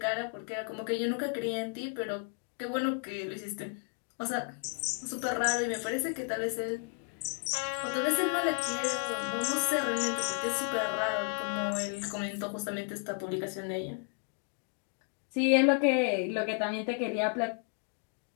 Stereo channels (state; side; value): quieter; right; 38.3 dB